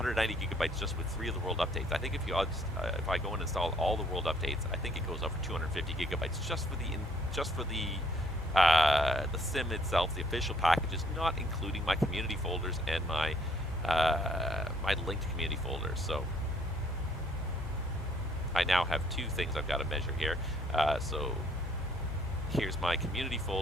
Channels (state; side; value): normal; both; correlation 0.64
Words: gigabytes just with 3 of the world updates. I think if I go and install all the world updates, I think it goes over 250 gigabytes just for the sim itself, the official packages, not including my community folders and my linked community folders. So I now have 2 things I've got to measure here. So here's my community